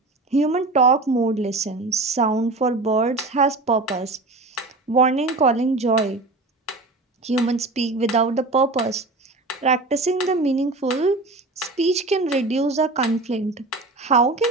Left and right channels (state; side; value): quieter; left; 3.2 dB